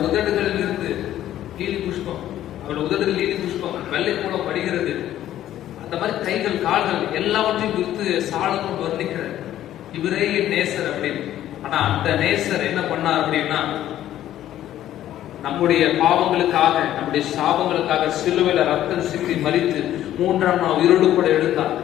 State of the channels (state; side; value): quieter; right; 12.5 dB